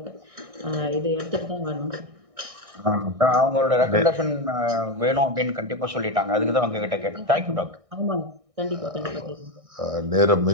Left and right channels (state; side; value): late; left; 1.6 ms